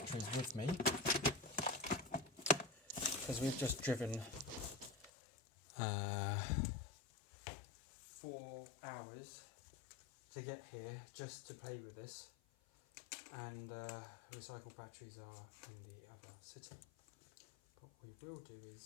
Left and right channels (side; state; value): right; drops out; at 5.1 s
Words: with me because we've just driven 4 hours to get here just to play with this, and recycled batteries are in the other city. But what we will do